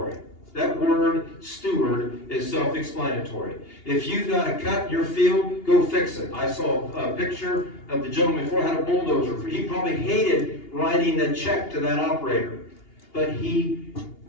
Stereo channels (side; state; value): right; late; 2.8 ms